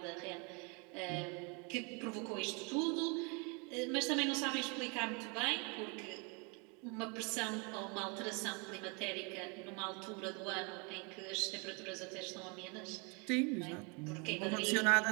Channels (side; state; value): left; quieter; 32.8 dB